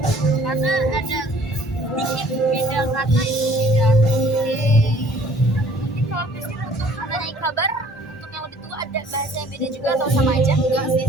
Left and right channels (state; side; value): normal; both; correlation 0.55